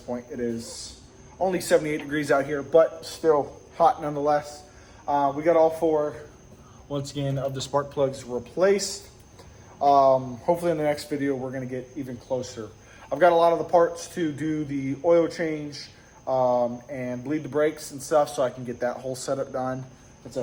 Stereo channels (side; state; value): both; identical; correlation 1.00